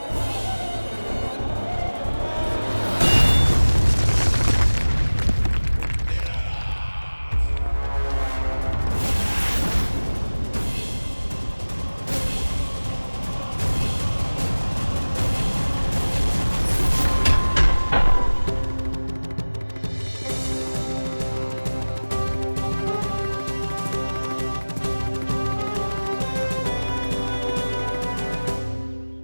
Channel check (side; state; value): both; inverted; correlation -1.00